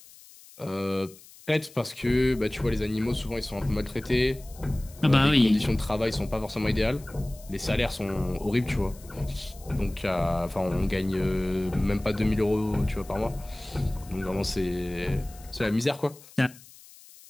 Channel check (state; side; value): noise; left; hiss, 22 dB below the sound